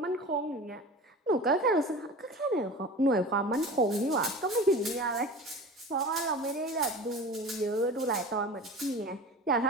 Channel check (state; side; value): normal; both; correlation 0.35